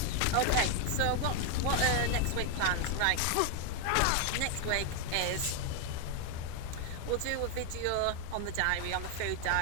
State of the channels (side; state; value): both; different; correlation 0.01